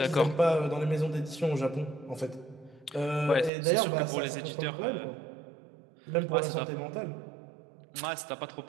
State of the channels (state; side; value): drops out; left; at 3.5 s